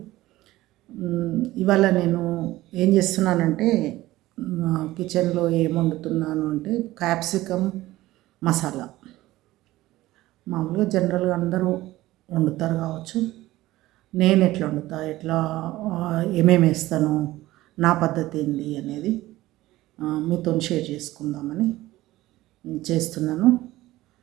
ఇవాళ నేను ఏం చేస్తున్నానంటే కిచెన్లో ఏం వండుతున్నాను అంటే క్యాప్సికమ్ మసాలా. మామూలుగా జనరల్గా అందరూ వండుతారు కావచ్చు. నేను ఎట్లా వండుతా, ఎట్లా ఏమేమి వేస్తాను, నా పద్ధతి ఏంటి అనేది మీతో షేర్ చేసుకుందామని చేస్తున్నాను.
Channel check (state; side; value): quieter; left; 17.0 dB